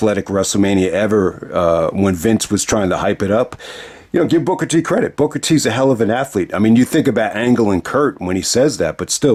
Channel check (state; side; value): identical; both; correlation 1.00